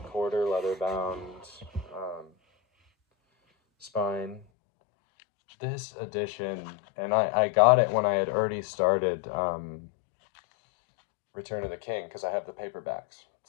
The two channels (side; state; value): right; drops out; at 4.5 s